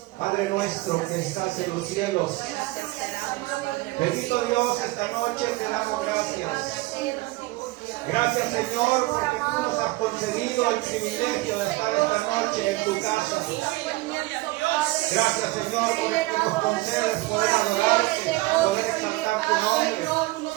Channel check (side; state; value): left; quieter; 20.5 dB